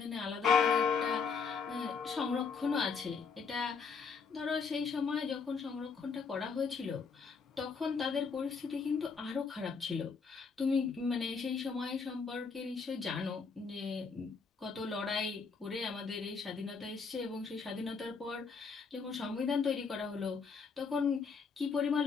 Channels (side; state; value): right; quieter; 5.3 dB